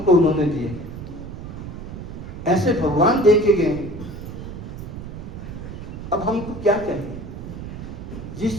उन्होंने दिए, ऐसे भगवान दे के गए। अब हमको क्या चाहिए?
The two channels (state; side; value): noise; right; rumble, 9 dB below the sound